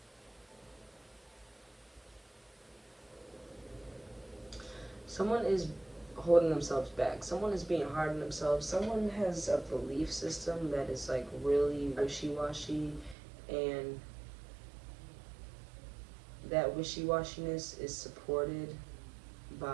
someone is holding themselves back. Someone is being hard on themselves. Someone has a belief system that is like really wishy-washy, and that wishy-washiness is supported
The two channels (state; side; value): drops out; left; at 13.2 s